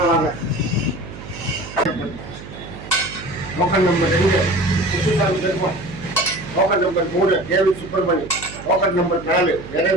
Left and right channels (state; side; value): noise; right; hum, 14 dB below the sound